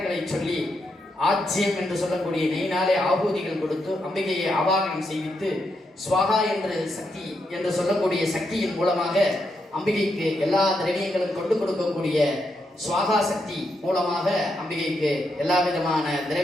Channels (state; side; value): normal; both; correlation 0.81